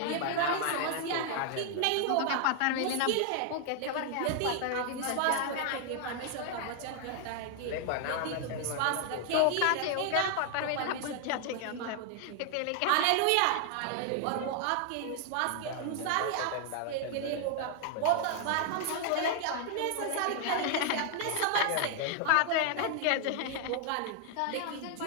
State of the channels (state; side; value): different; both; correlation 0.00